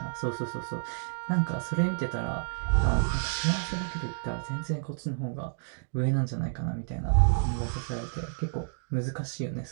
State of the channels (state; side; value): silent; left; digital silence